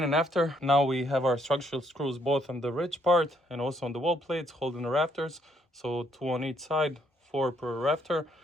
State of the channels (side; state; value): both; normal; correlation 0.71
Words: after. Now we have our structural screws both on the ridge part and also on the wall plates holding the rafters. So 2 on each side, 4 per rafter.